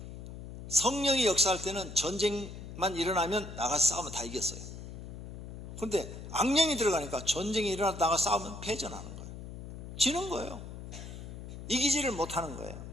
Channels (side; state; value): left; noise; hum, 11 dB below the sound